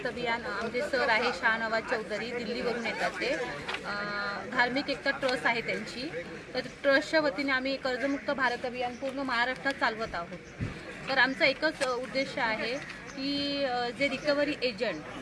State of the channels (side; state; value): both; identical; correlation 1.00